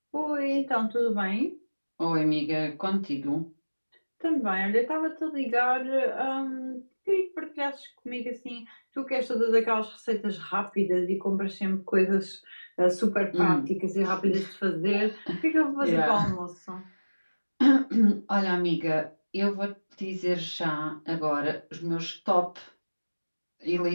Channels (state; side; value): inverted; both; correlation -1.00